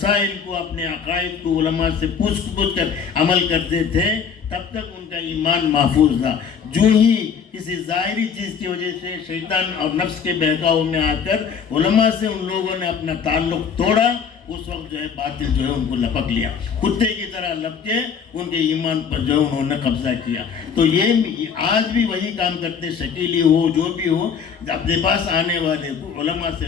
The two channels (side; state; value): right; quieter; 6.7 dB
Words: کو، اپنے عقائد کو علماء سے پوچھ کر عمل کرتے تھے، تب تک ان کا ایمان محفوظ تھا۔ جو ہی کسی ظاہری چیز کی وجہ سے شیطان اور نفس کے بہکاؤ میں آ کر علماء سے ان لوگوں نے اپنا تعلق توڑا، اس وقت جو ہے باطل جو ہے ان کو لپک لیا، کتے کی طرح لپکے ان کے ایمان پر جو انہوں نے قبضہ کیا۔ تو یہ آج بھی وہی کام کرتے، شکیلی ہو جو بھی ہو، اپنے پاس آنے والے کو علماء سے